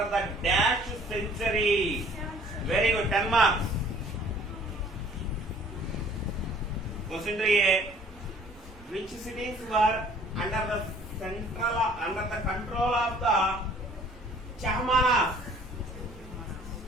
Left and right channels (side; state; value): both; normal; correlation 0.54